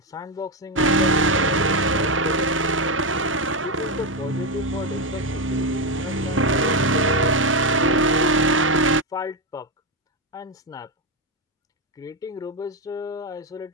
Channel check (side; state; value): both; normal; correlation 0.09